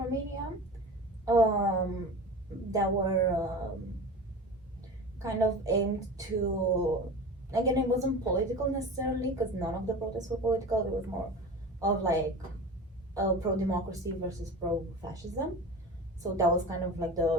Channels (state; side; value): normal; both; correlation 0.33